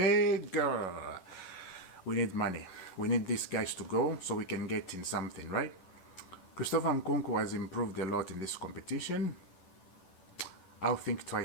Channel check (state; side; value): late; right; 11 ms